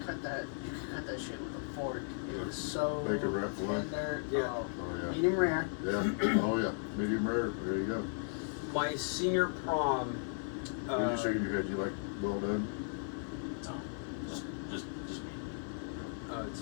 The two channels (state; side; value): silent; right; 54 dB below the other